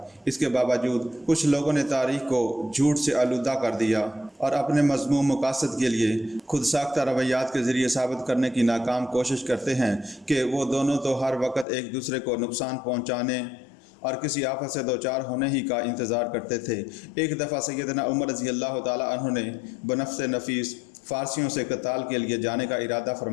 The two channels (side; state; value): right; drops out; at 11.7 s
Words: اس کے باوجود کچھ لوگوں نے تاریخ کو جھوٹ سے آلودہ کر دیا اور اپنے مذموم مقاصد کے لیے خود ساختہ رویات کے ذریعے ثابت کرنے کی ناکام کوشش کرتے ہیں کہ وہ دونوں تو ہر وقت ایک دوسرے کو نقصان پہنچانے اور کسی آفت سے دوچار ہونے ہی کا انتظار کرتے تھے۔ ایک دفعہ سیدنا عمر رضی اللہ تعالیٰ عنہ نے بنفس نفیس فارسیوں سے قتال کے لیے جانے کا ارادہ